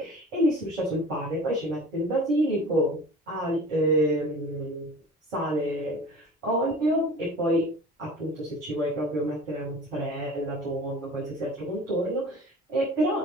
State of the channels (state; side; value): normal; both; correlation 0.41